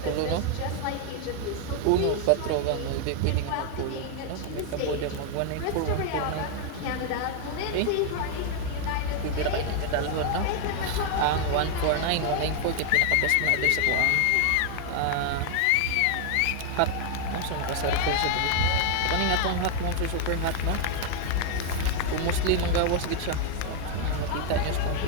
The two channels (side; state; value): both; different; correlation 0.00